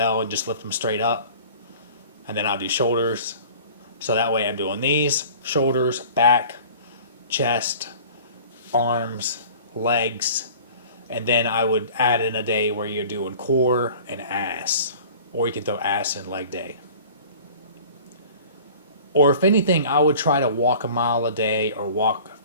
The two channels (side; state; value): both; inverted; correlation -0.44